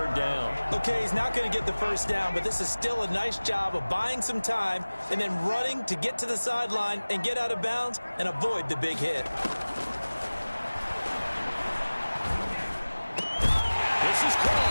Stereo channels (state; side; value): inverted; both; correlation -1.00